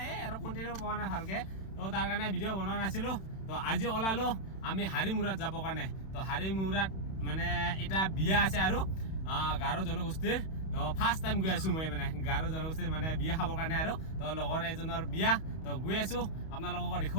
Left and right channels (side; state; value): right; late; 31 ms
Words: এই আৰু কন্টেন্ট পোৱা নাই ভালকে তো তাৰ কাৰণে ভিডিও বনোৱা নাছিলো তো আজি ওলালো আমি হাৰিমুৰাত যাব কাৰণে তো হাৰিমুৰাত মানে এটা বিয়া আছে আৰু গাৰো জনগোষ্ঠীৰ তো ফাৰ্স্ট টাইম গৈ আছো মই মানে গাৰো জনগোষ্ঠীৰ মানে বিয়া খাবৰ কাৰণে আৰু তো লগৰ এজনৰ বিয়া তো গৈ আছো আপোনালোকক